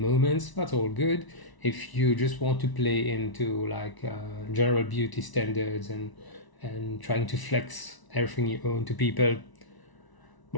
that's all good. If you just want to play into like general beauty standards and trying to flex everything you own to people,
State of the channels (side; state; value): right; late; 1.0 ms